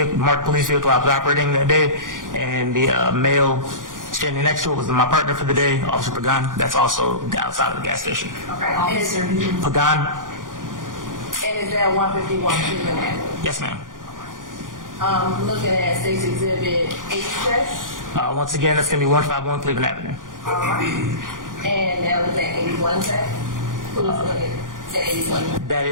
marked police vehicle I was operating that day, and the male standing next to it was my partner for the day, Officer Pagan. That's also the outside of the gas station. Okay. And is there, Pagan? and is that 151 Cleveland Avenue? Yes, ma'am. Looking at State's Exhibit 86. Once again, that's going to be 151 Cleveland Avenue. All right. And now look at 81 J. Who's looking at 81? That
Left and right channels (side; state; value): left; late; 0.89 ms